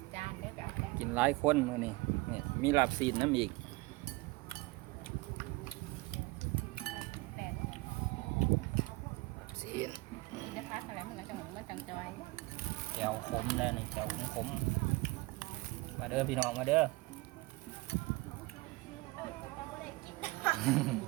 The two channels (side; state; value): left; quieter; 22.6 dB